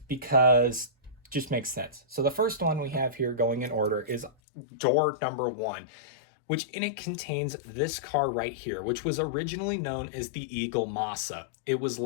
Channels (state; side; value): drops out; right; at 4.3 s